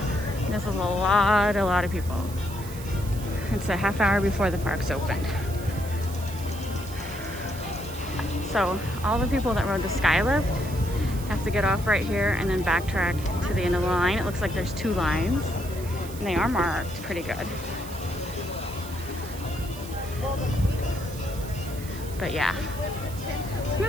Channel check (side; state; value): right; noise; hiss, 16 dB below the sound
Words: this is a lot of people. It's a half hour before the park's opened. So all the people that rode the Skylift have to get off right here and then backtrack to the end of the line. It looks like there's 2 lines, and they are marked pretty good. But yeah, it's